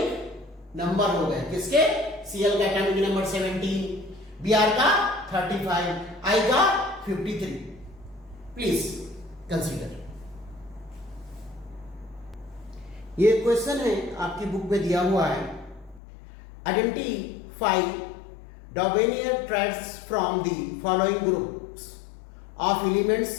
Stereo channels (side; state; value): right; drops out; at 16.0 s